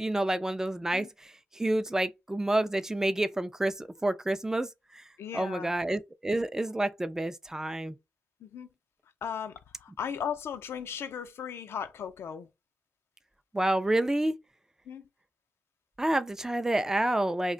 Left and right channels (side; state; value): both; normal; correlation 0.92